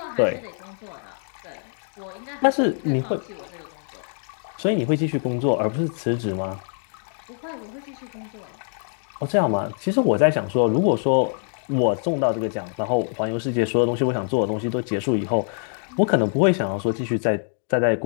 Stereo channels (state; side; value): silent; right; 62 dB below the other